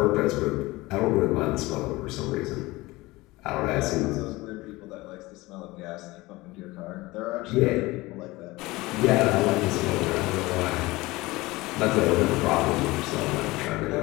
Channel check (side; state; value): right; quieter; 20.7 dB